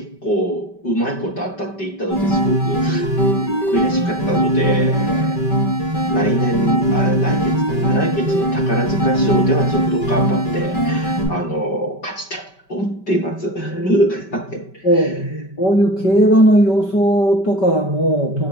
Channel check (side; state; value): right; late; 5.2 ms